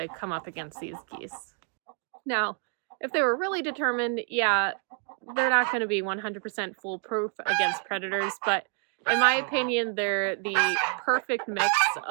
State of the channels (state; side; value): quieter; left; 39.0 dB